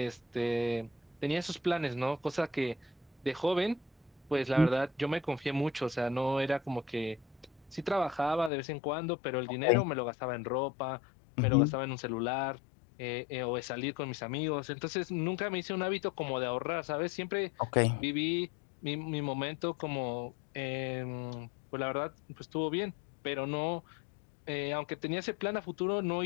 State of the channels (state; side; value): drops out; right; at 8.5 s